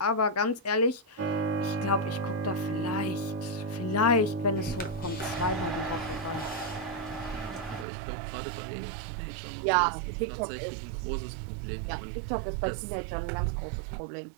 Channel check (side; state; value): left; drops out; at 7.9 s